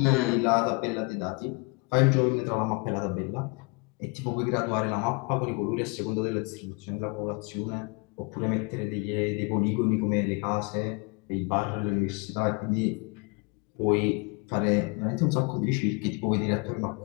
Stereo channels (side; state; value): right; quieter; 30.2 dB